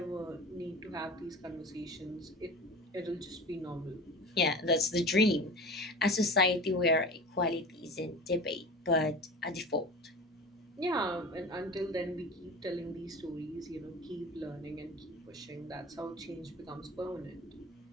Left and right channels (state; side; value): normal; both; correlation 0.35